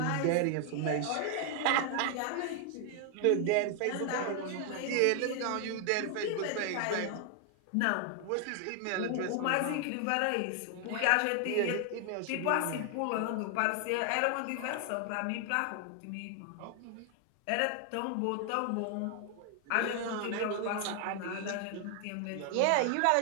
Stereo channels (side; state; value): both; different; correlation 0.00